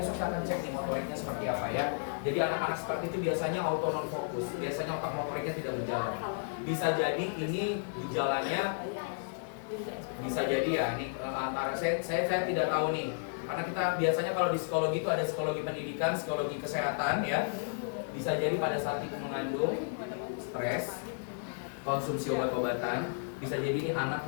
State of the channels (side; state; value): right; silent; 56 dB below the other